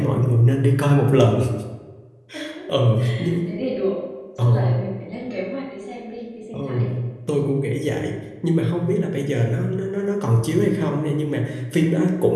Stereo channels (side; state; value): both; identical; correlation 1.00